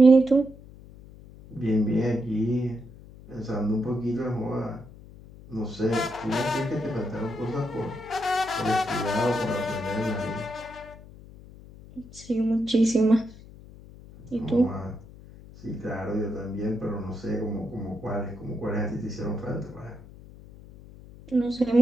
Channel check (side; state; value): left; noise; hum, 19 dB below the sound